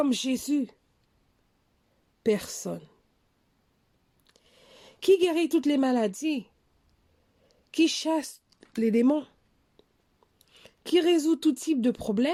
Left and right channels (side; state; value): both; identical; correlation 1.00